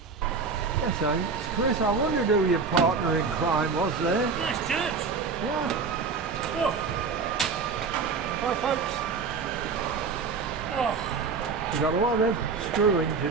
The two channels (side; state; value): left; quieter; 5.0 dB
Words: Yes, thanks. Chris, I wondered who your partner in crime was there. Nice Gerbs. Yeah. Oh. Hi, folks. Oh. We've got a lot of screwing to